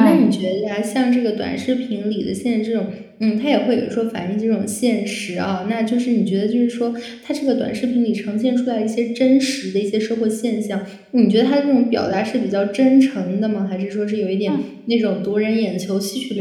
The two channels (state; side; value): identical; both; correlation 1.00